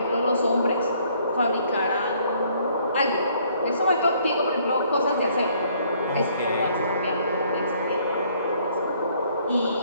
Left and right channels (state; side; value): inverted; both; correlation -0.63